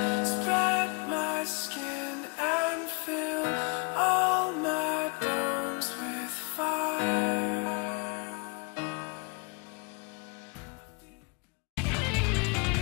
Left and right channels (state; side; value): quieter; right; 33.0 dB